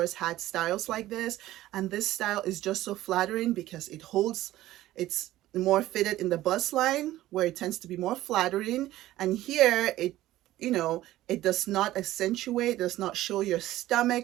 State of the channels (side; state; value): left; quieter; 15.2 dB